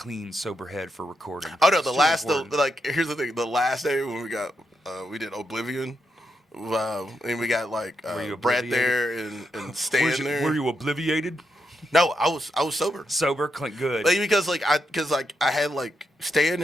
sober head for recording. Oh no, It's too important. like here's the thing. The last day when we did Oblivion, and we got like Were you Brett obliviated? there and Stan there. Were you obliviated? No, I was sober. Sober, clean, good. Like, because I had like Stan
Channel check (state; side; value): normal; both; correlation 0.82